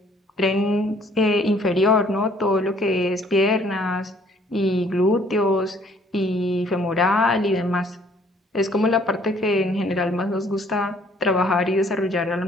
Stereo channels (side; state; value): both; normal; correlation 0.60